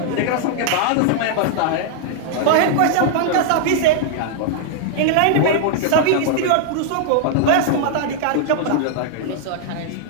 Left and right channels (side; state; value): both; different; correlation -0.01